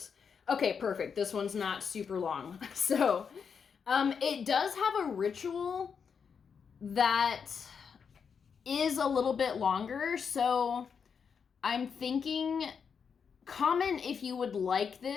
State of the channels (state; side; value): quieter; right; 6.4 dB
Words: Okay, perfect. This one's not super long. So, it does have a ritual that is a little bit longer, so I'm thinking, comment if you would like